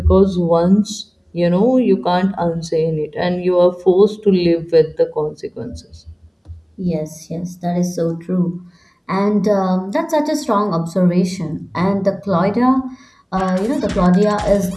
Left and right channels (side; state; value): both; identical; correlation 1.00